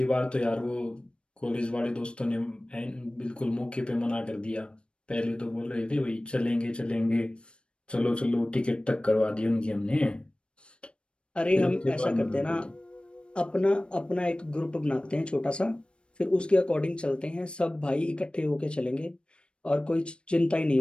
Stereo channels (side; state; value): right; late; 0.056 ms